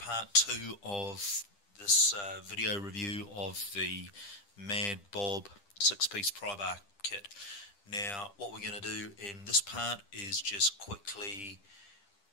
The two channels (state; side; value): late; right; 10 ms